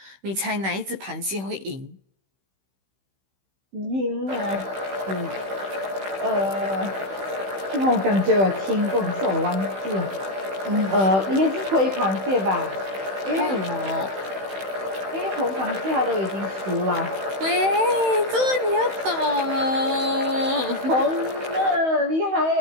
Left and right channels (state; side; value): late; left; 16 ms